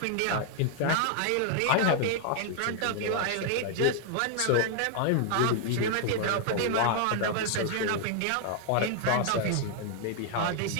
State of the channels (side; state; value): both; different; correlation 0.00